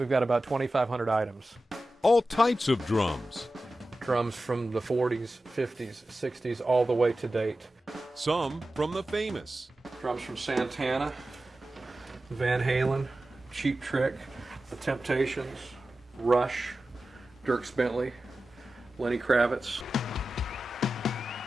got about 2,500 items. All types of drums. Drums from the 40s, 50s, 60s, all the way to date. Some from the famous. Drums from Santana, Van Halen, Cheap Trick, The Temptations, Rush, Dierks Bentley, Lenny Kravitz.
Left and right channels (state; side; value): normal; both; correlation 0.94